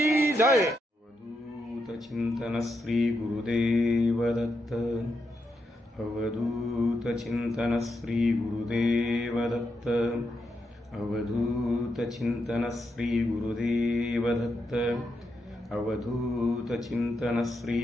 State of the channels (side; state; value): both; normal; correlation 0.83